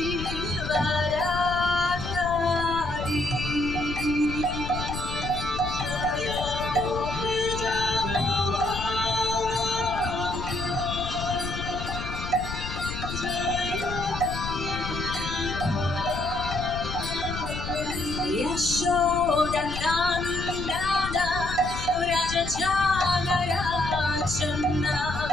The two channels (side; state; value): left; noise; rumble, 7 dB below the sound